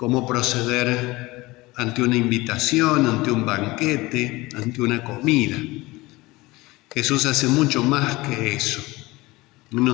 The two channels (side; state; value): right; quieter; 21.0 dB